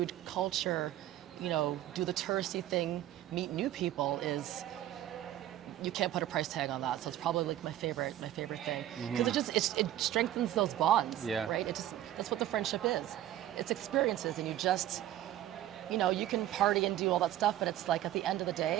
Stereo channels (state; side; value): quieter; left; 13.0 dB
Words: culture, you know, do the touristy thing, meet new people is, you can't put a price tag on that. So it's probably like my favorite thing. Because it strengthens those bonds, Yeah. right? That's what the friendship is. It's experiences, and you just, you know, you can party and do all that stuff, but it's like at the end of the